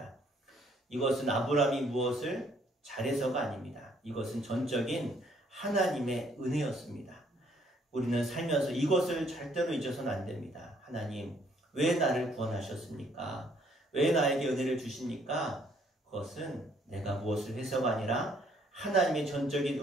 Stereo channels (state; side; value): normal; both; correlation 0.65